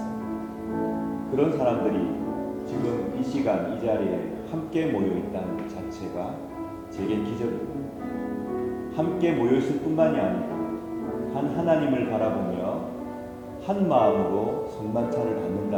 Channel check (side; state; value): both; identical; correlation 1.00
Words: 그런 사람들이 지금 이 시간 이 자리에 함께 모여 있다는 것 자체가 제겐 기적입니다. 함께 모여 있을 뿐만이 아니고 한 하나님을 바라보며 한 마음으로 성만찬을